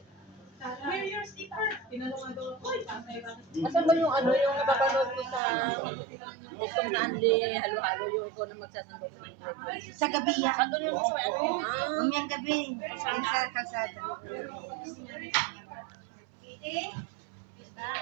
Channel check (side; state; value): left; drops out; at 5.4 s